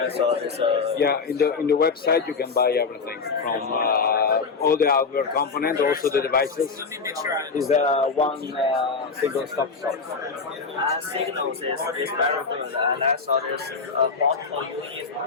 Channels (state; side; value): quieter; right; 4.9 dB